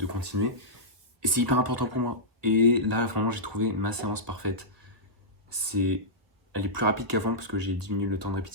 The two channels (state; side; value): late; left; 1.6 ms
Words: continuer. Et c'est hyper important pour moi. Et là, vraiment, j'ai trouvé ma séance parfaite. C'est, Elle est plus rapide qu'avant parce que j'ai diminué le temps de